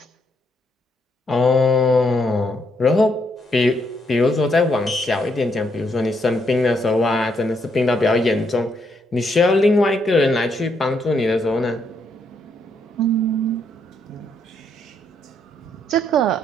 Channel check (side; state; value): both; normal; correlation 0.75